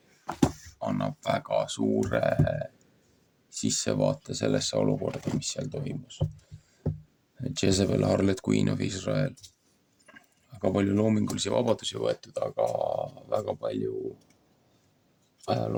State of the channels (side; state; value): both; identical; correlation 1.00